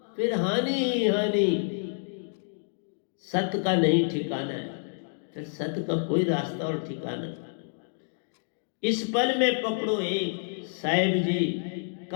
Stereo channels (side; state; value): right; silent; digital silence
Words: फिर हानि ही हानि। सत्य का नहीं ठिकाना है, फिर सत्य का कोई रास्ता और ठिकाना। इस पल में पकड़ो एक, साहिब जी